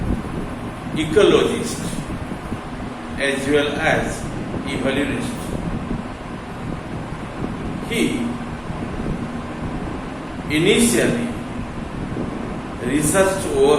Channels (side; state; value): both; identical; correlation 1.00